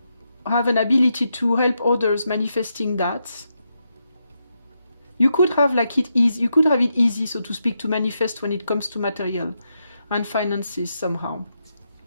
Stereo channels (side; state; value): both; inverted; correlation -0.83